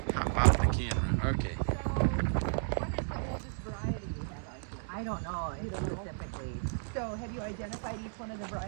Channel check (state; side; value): silent; left; digital silence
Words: hop off the camera. Okay. What is the oldest variety you have out here? I don't know specifically. So have you identified each one of the